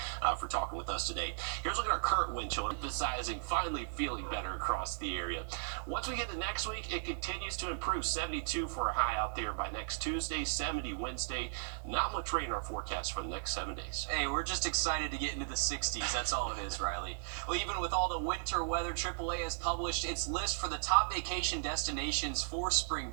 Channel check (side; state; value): left; silent; digital silence